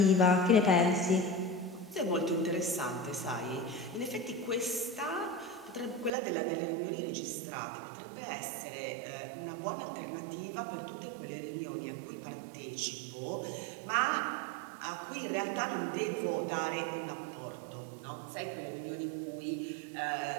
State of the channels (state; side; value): drops out; left; at 6.1 s